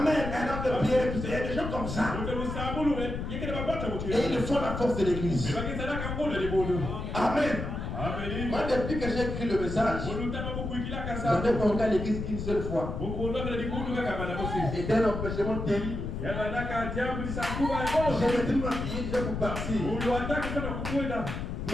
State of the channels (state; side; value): noise; left; rumble, 5 dB below the sound